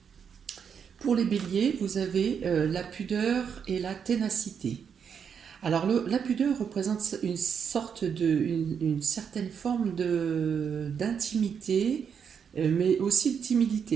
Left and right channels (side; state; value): left; quieter; 7.1 dB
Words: vous avez la pudeur et la ténacité. Alors la pudeur représente une certaine forme d'intimité, mais aussi de